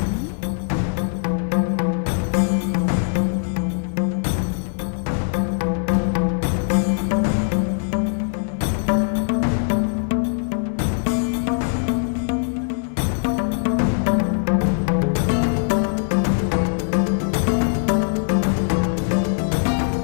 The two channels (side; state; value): right; silent; digital silence